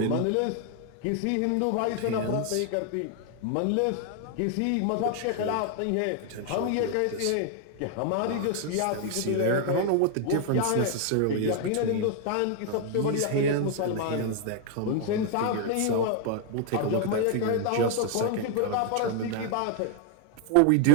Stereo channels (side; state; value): both; different; correlation 0.00